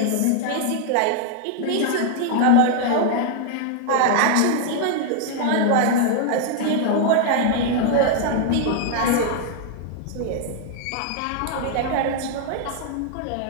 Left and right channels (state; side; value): different; both; correlation 0.00